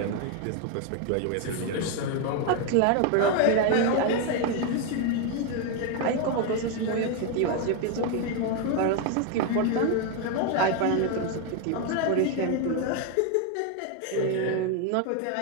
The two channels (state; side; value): different; both; correlation 0.01